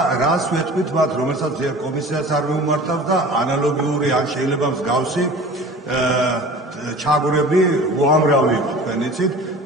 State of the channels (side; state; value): both; normal; correlation 0.41